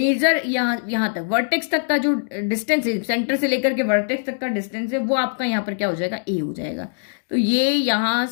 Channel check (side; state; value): right; silent; digital silence